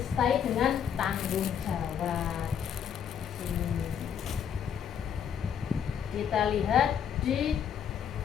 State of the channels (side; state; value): right; quieter; 8.3 dB